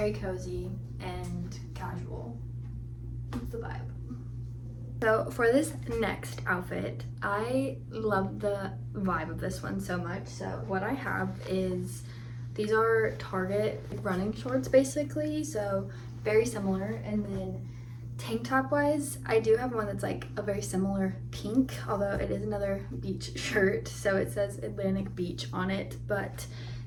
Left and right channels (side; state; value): both; identical; correlation 1.00